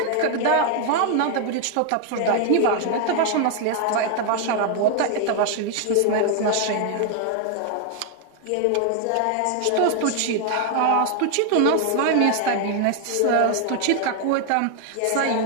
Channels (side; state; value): both; different; correlation 0.00